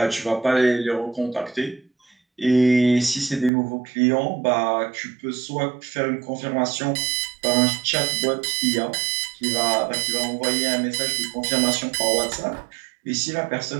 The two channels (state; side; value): drops out; left; at 3.5 s